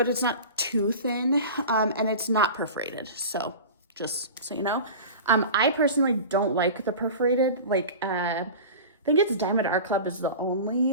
it's not too thin, and it's not perforated. So just so you know, I personally don't like the perforated. Like, I think it's Diamond Art Club is the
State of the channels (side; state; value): both; inverted; correlation -0.33